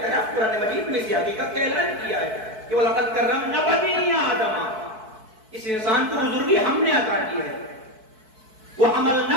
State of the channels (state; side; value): late; left; 4.6 ms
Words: قرآن مجید میں اسی حقیقت کا اعلان کیا ہے کہ وَلَقَدْ كَرَّمْنَا بَنِي آدَمَ، اس انسان کو بزرگی ہم نے عطا کی ہے.